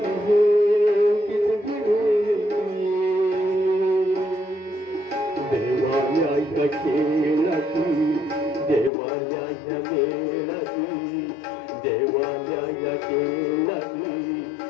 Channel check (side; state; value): right; drops out; at 8.9 s